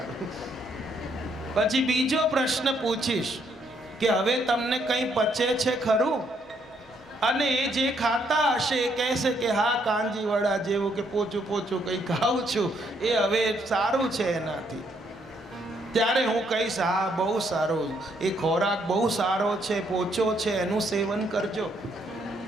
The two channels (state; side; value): normal; both; correlation 0.71